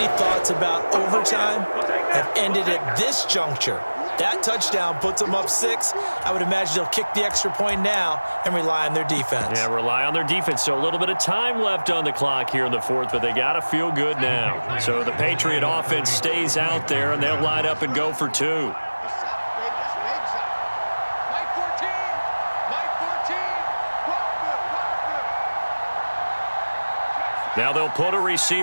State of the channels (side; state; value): both; inverted; correlation -1.00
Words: thoughts about overtime have ended at this juncture. That touchdown puts them up 6. I would imagine they'll kick the extra point now and rely on their defense. Yeah, rely on their defense. So a little bit of time left on the clock here in the fourth, but they got to feel good now. So the Patriot offense stays out there, and they'll line up and go for 2. Now they'll put a